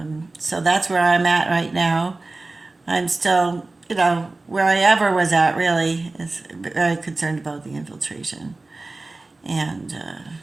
so that's where I'm at right now. I'm still, you know, where I ever was at really is very concerned about the infiltration, and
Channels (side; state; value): left; quieter; 3.2 dB